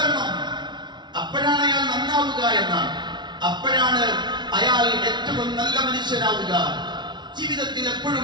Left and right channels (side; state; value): left; late; 0.21 ms